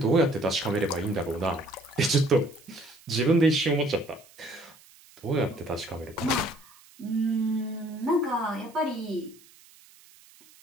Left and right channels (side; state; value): right; noise; hiss, 25 dB below the sound